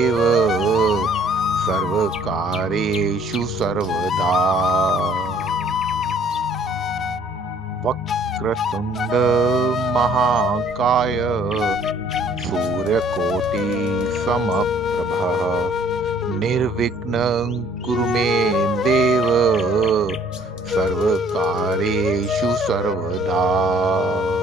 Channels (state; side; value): normal; both; correlation 0.58